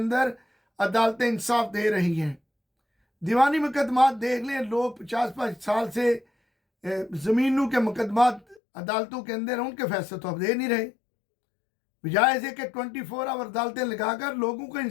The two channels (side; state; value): right; drops out; at 8.6 s